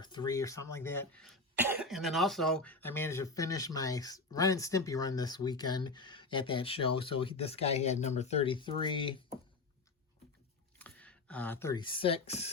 3 or something like that. And then also, I managed to finish my Ren and Stimpy run this weekend at that show. So this guy had #33,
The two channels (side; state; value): right; quieter; 3.4 dB